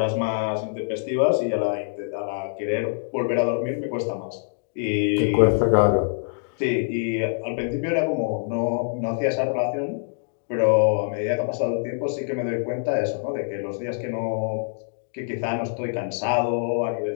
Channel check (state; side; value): silent; right; digital silence